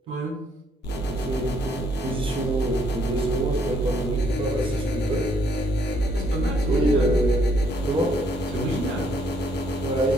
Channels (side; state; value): both; normal; correlation 0.69